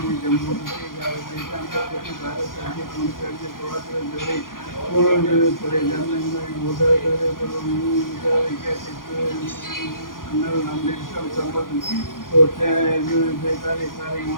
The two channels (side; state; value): right; late; 0.90 ms